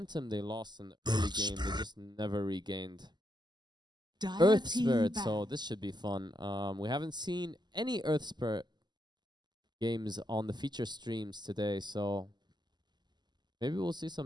they lost in the early game, they just never regained. Dire Earth team Spirit, ban. so this should be fun. We haven't seen any Earth Spirit games on the feature streams today, so maybe we'll see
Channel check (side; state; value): left; late; 0.21 ms